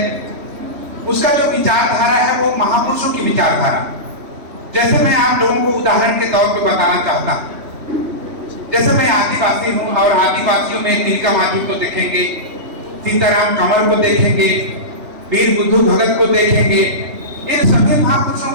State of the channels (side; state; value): left; late; 3.1 ms